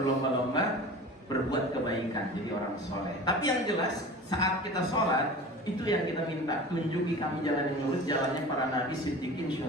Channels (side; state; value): both; normal; correlation 0.37